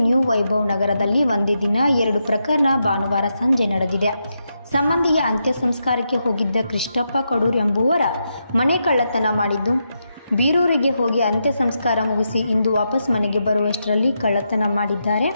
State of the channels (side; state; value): both; inverted; correlation -0.84